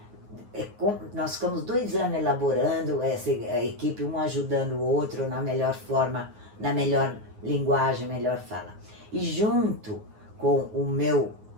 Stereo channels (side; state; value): left; late; 9.5 ms